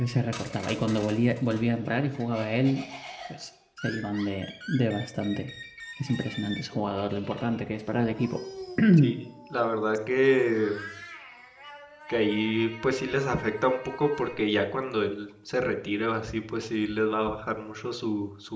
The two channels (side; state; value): both; identical; correlation 1.00